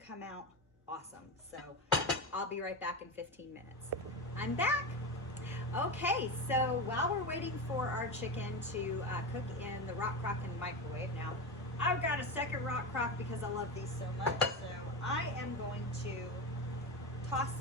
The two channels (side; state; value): both; normal; correlation 0.20